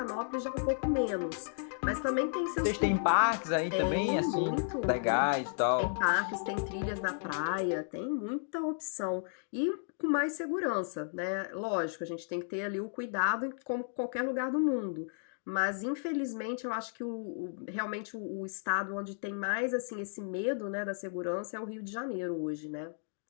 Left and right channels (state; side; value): silent; right; digital silence